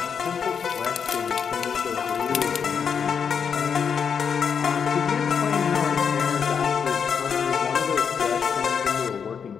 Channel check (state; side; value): quieter; right; 6.8 dB